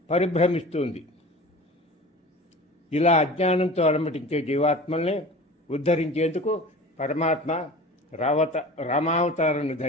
పరిభ్రమిస్తుంది. ఇలా అజ్ఞానంతో అలమటించే జీవాత్మల్ని ఉద్ధరించేందుకు పరమాత్మ రామావతారాన్ని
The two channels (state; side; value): normal; both; correlation 0.38